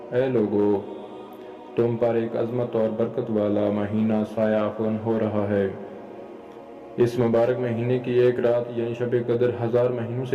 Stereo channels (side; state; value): both; identical; correlation 1.00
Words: اے لوگو، تم پر ایک عظمت اور برکت والا مہینہ سایہ افکن ہو رہا ہے۔ اس مبارک مہینے کی ایک رات یعنی شب قدر 1000 مہینوں